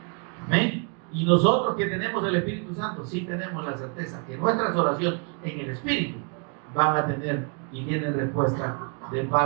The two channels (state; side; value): quieter; left; 37.6 dB